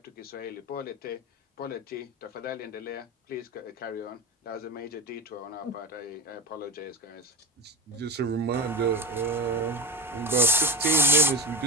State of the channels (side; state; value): both; normal; correlation 0.26